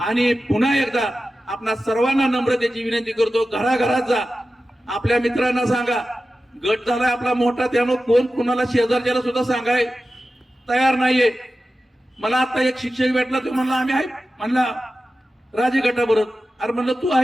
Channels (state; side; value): normal; both; correlation 0.94